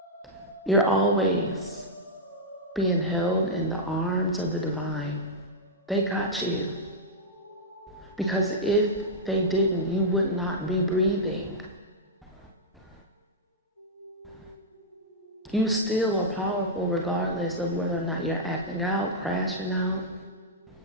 You're always being held in the arms of the divine. They got you. Because if they didn't, you would not be breathing. You still are powerful regardless of whether or not you're acting out, crashing out.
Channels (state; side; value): normal; both; correlation -0.08